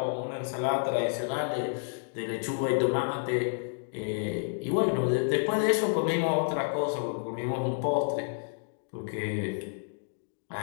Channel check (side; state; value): right; silent; digital silence